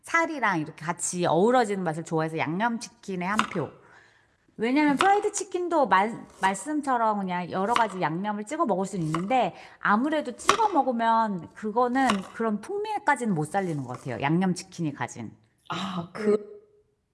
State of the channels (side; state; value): both; identical; correlation 1.00